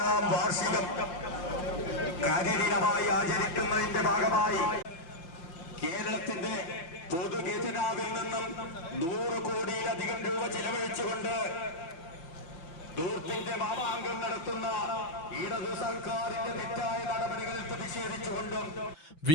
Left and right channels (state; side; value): late; right; 6.0 ms